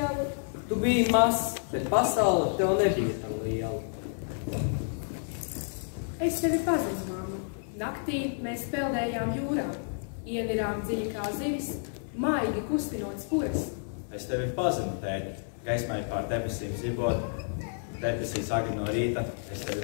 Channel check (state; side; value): silent; right; 58 dB below the other